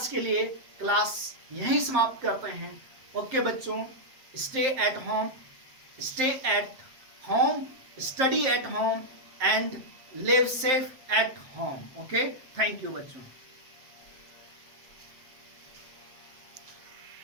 के लिए क्लास यहीं समाप्त करते हैं। ओके बच्चों, stay at home, study at home and live safe at home. Okay, thank you बच्चों।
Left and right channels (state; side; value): late; left; 7.7 ms